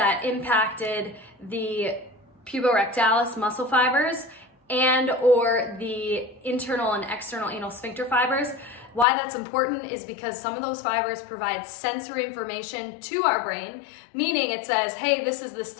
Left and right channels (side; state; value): right; drops out; at 9.1 s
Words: impacted the puborectalis muscle fibers and or the internal and external anal sphincter fibers. Why that's important is because some of those fibers provide sensory information to our brain, meaning it says, hey, this is